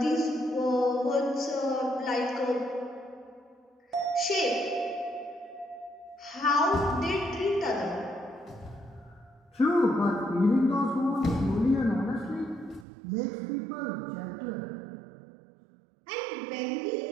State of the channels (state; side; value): drops out; left; at 12.9 s